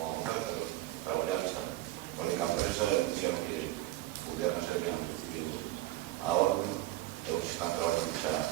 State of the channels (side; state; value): left; quieter; 16.3 dB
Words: a votar, pero traballar está. Para que a empresa dixeron que pudieran ser bien recibido a orden, pero que están traballando xa